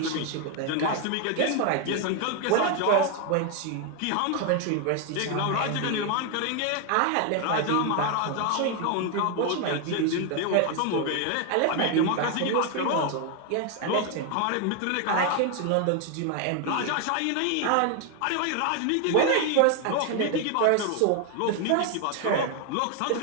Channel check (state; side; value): different; both; correlation 0.01